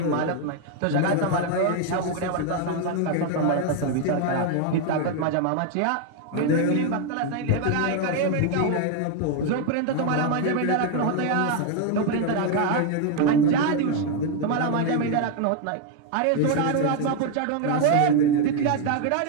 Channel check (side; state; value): both; different; correlation 0.01